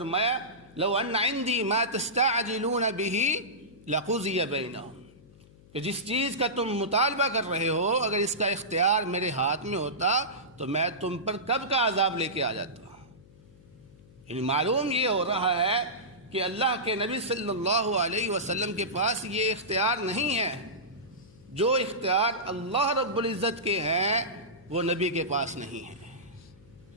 لو ان عندي ما تستعجلون به لقضي بينهم، کہ جس چیز کا تم مطالبہ کر رہے ہو اگر اس کا اختیار میرے ہاتھ میں ہوتا تو میں تم پر کب کا عذاب لے کے آ جاتا۔ یعنی معلوم یہ ہو رہا ہے کہ اللہ کے نبی صلی اللہ علیہ وسلم کے پاس یہ اختیار نہیں ہے، جو اختیار اللہ رب العزت کے ہیں وہ نبی کے پاس نہیں ہے۔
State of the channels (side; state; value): left; noise; hum, 25 dB below the sound